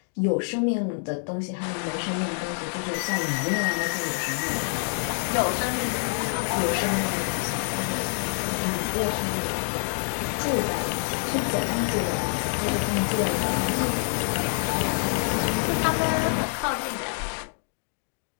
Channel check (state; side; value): silent; right; 58 dB below the other